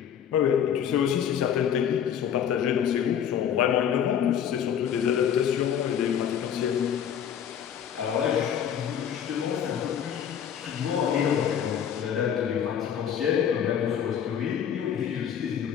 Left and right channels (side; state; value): right; quieter; 8.7 dB